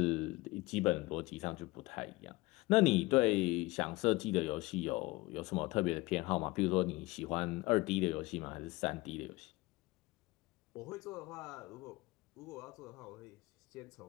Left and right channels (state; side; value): quieter; right; 21.5 dB